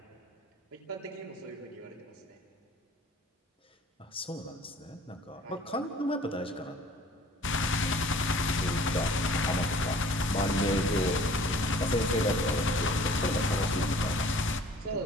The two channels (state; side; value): normal; both; correlation 0.51